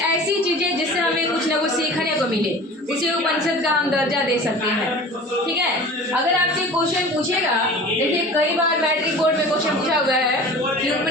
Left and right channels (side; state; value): both; normal; correlation 0.40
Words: ऐसी चीजें जिससे हमें कुछ ना कुछ सीखने को मिले उसे उपनिषद का हम दर्जा दे सकते हैं, ठीक है। अगर आपसे क्वेश्चन पूछेगा, देखिए कई बार मैट्रिक बोर्ड में क्वेश्चन पूछा हुआ है कि